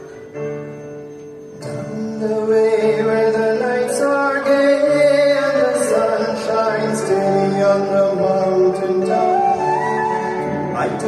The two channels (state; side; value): identical; both; correlation 1.00